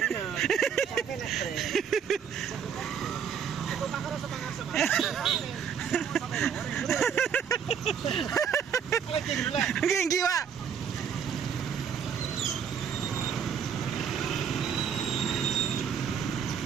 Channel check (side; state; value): left; quieter; 7.5 dB